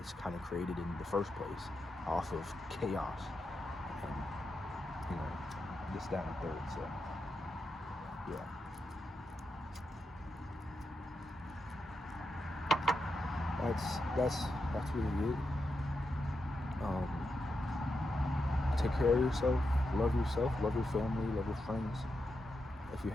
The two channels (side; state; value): both; normal; correlation 0.86